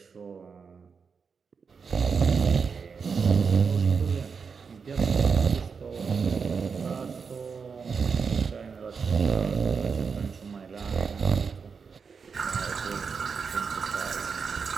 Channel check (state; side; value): quieter; left; 5.7 dB